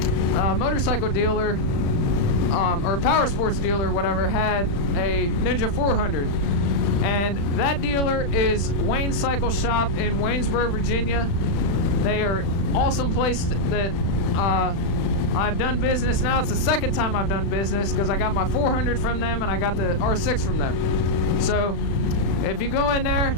motorcycle dealer or power sports dealer, whatever, had a Ninja 400, and that dealer is Wayne Cycle Shop in Waynesboro, Virginia. They are an awesome place that I've done business. Now it's the second time I've done business, because I got my 400 from them and I got the R6 from them. So if you go in there,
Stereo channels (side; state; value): right; late; 36 ms